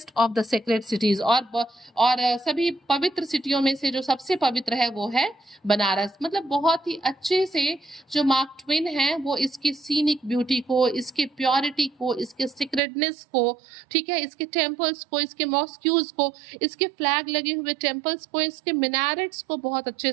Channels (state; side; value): drops out; left; at 12.8 s